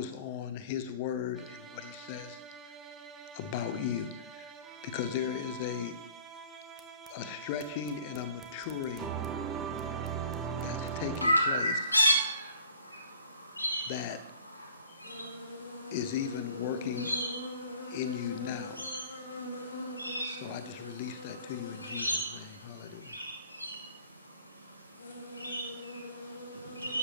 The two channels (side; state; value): both; inverted; correlation -0.49